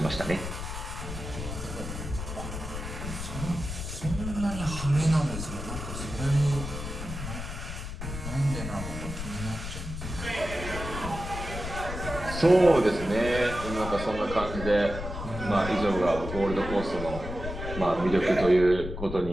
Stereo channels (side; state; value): left; noise; rumble, 7 dB below the sound